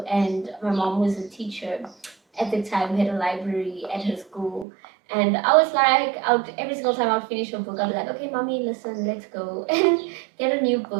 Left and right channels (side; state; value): left; drops out; at 4.7 s